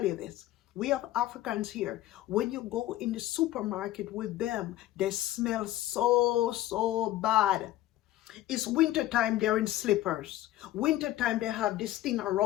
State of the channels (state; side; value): quieter; right; 14.9 dB